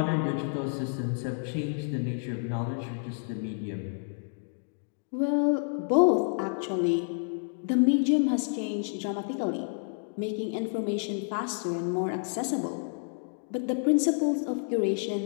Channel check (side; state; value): right; silent; digital silence